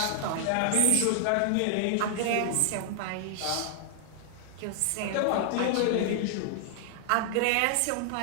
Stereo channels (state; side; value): different; both; correlation 0.00